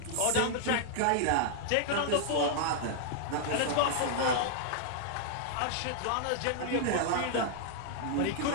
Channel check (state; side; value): different; both; correlation -0.01